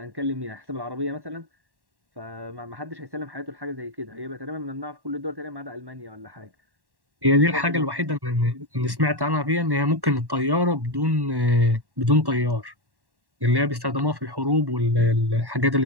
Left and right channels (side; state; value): left; late; 1.1 ms